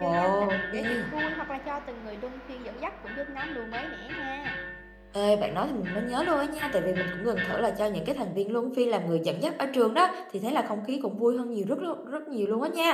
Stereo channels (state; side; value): identical; both; correlation 1.00